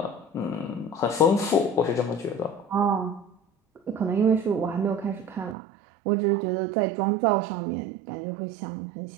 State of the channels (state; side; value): drops out; left; at 5.6 s